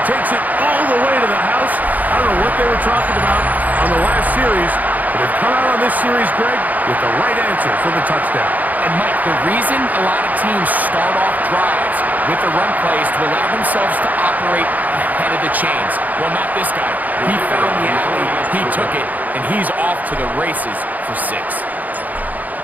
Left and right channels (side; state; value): left; late; 0.080 ms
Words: takes it all the way to the house. I don't know what they were talking about on the last series, but they've come out on this series, Greg, with the right answer for the touchdown. And, Mike, the reason a lot of teams start off drives with the run plays to allow themselves to operate ahead of the chains. Well, not this guy. He found the alley, he took it, and he's off to the races for 6.